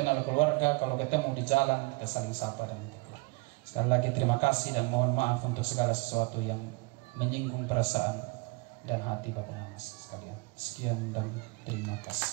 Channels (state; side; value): quieter; left; 26.7 dB